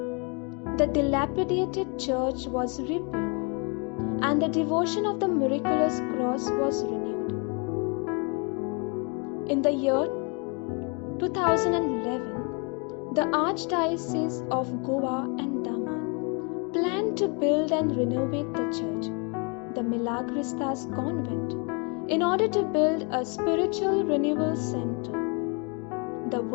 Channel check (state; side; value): quieter; right; 34.3 dB